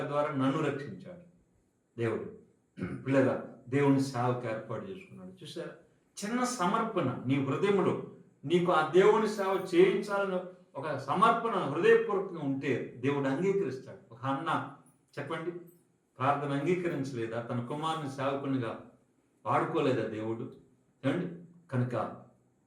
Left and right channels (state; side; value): identical; both; correlation 1.00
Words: ద్వారా నన్ను రక్షించాడు దేవుడు. పిల్లగా దేవుని సేవకు ఏర్పాటు చేసుకున్నాడు. చూసారా, చిన్న సమర్పణ నీ హృదయంలో, నీకు ఆ దేవుని సేవ చేయించాలని ఒక సమర్పణ హృదయపూర్వకంగా ఉంటే దేవుడు అంగీకరిస్తాడు. ఒక అన్న చెప్పండి, ప్రార్థన అంగీకరించలేదా? తన కుమారుని సేవకునిగా వాడుకోలేదా దేవుడు? ఏమండి, కనుక